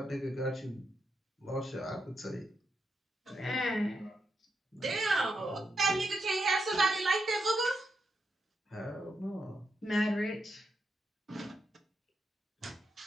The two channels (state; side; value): normal; both; correlation 0.83